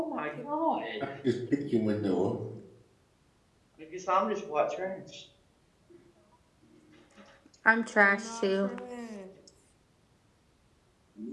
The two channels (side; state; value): both; identical; correlation 1.00